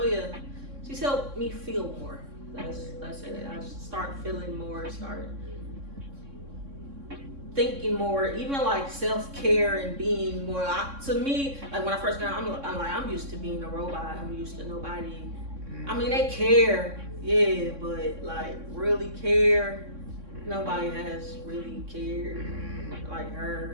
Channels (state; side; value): late; left; 3.6 ms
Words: yeah. She's helped me feel more. That's it. I start feeling more, start thinking more, even like self-care and being more. To me, like when I first got out, I'm used to being a robot. I'm used to nobody. I mean, they care, yeah, but like really care, nobody has really cared like